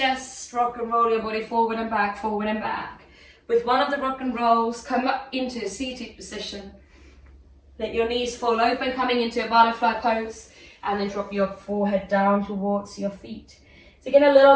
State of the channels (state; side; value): identical; both; correlation 1.00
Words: rock and roll your body forward and back, forward and back. With one of the rock and rolls, come up into a seated position. Let your knees fall open, coming into a butterfly pose, and then drop your forehead down towards your feet. So get a